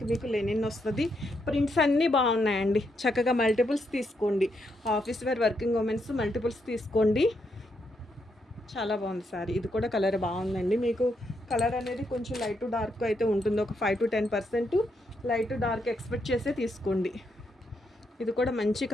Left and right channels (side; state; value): both; normal; correlation 0.79